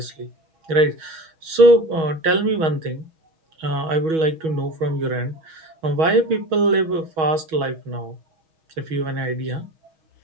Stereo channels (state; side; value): late; left; 6.2 ms